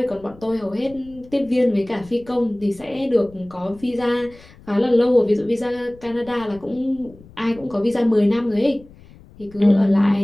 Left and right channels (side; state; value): left; noise; rumble, 23 dB below the sound